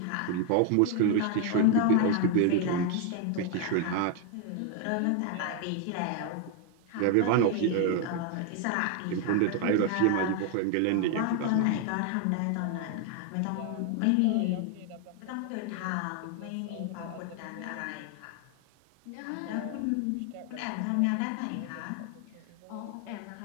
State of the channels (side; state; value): both; different; correlation 0.00